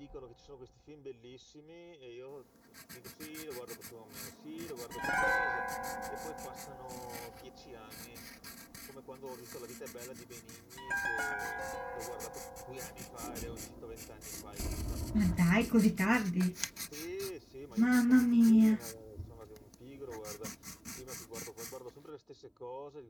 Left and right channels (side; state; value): both; identical; correlation 1.00